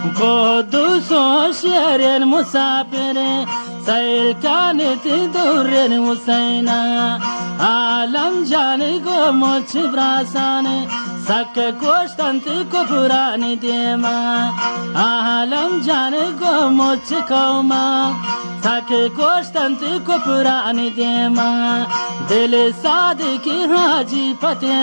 قدوس شير مسافر سيل كانت دور وسينا عالم جاني قومت براساني سك كوشتنت كفراني ديما عالم جاني قومت كوما سك كوشتنت كفراني ديما دل صادق حاجي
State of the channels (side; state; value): both; inverted; correlation -1.00